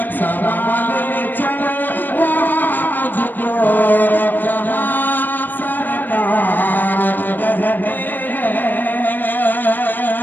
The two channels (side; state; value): right; late; 0.090 ms